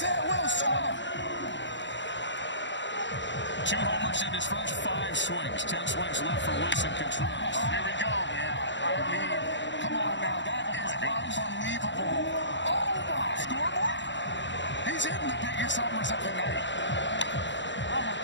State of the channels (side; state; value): right; late; 0.53 ms